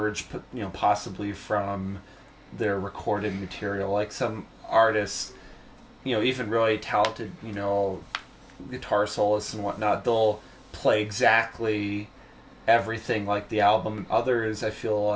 possibly from their recorded material. Like some artists, even really talented, guitar soloists and whatnot, they'll play exactly everything like the album. Others, I feel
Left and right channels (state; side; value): identical; both; correlation 1.00